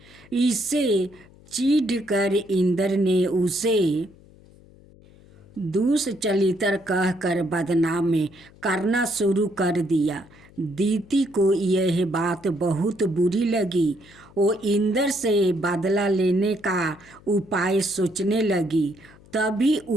इससे चिढ़कर इंद्र ने उसे दुष्चरित्र कहकर बदनाम करना शुरू कर दिया। दीति को यह बात बहुत बुरी लगी। वो इंद्र से बदला लेने का उपाय सोचने लगी। तभी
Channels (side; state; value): left; noise; hum, 25 dB below the sound